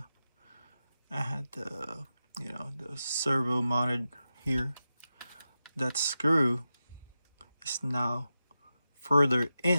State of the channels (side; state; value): both; inverted; correlation -0.91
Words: you know, the servo mounted here, that screw is now further